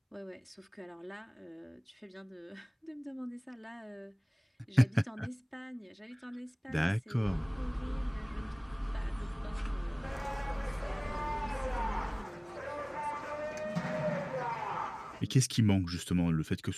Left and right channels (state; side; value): identical; both; correlation 1.00